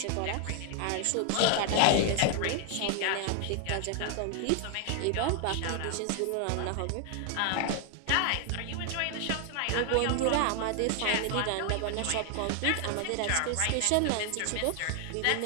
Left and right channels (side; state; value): both; different; correlation 0.00